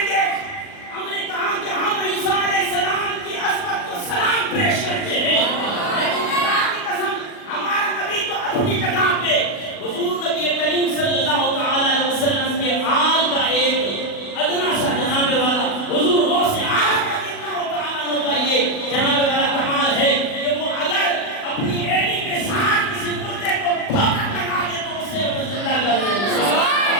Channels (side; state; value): right; late; 40 ms